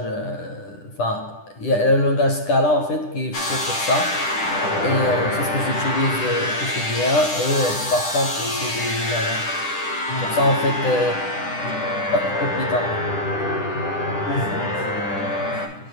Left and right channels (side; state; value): right; late; 10 ms